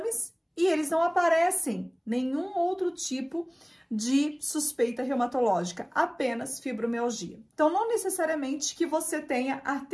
e eles não aparecem nenhum outro tipo de suspeita reumatológica, apenas fibromialgia. Então, não necessariamente que você tenha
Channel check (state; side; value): identical; both; correlation 1.00